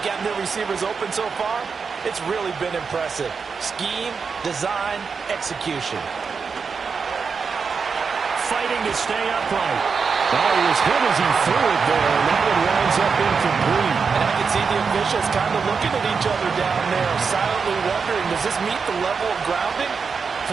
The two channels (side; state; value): left; quieter; 5.5 dB